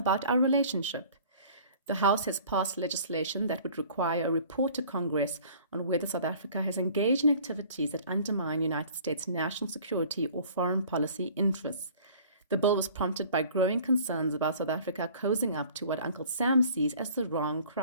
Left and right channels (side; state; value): both; inverted; correlation -0.50